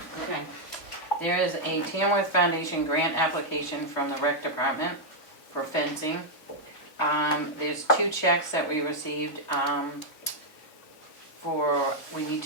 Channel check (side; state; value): right; late; 3.3 ms